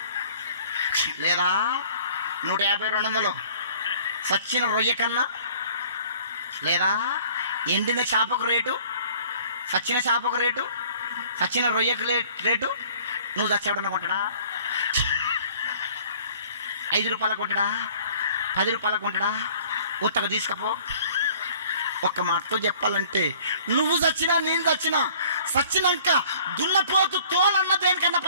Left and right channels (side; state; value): both; inverted; correlation -0.52